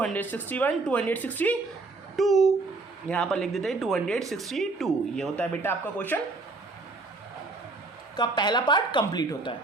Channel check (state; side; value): quieter; left; 3.5 dB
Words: 262, यहाँ पर लिख देते हैं 262। ये होता है बेटा आपका क्वेश्चन का पहला पार्ट कंप्लीट होता है।